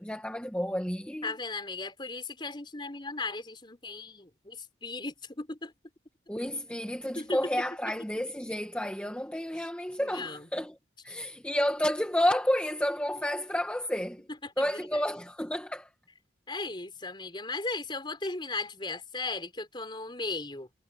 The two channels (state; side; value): normal; both; correlation 0.75